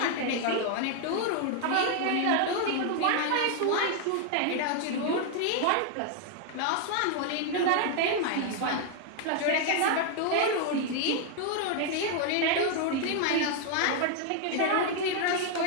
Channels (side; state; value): both; different; correlation 0.00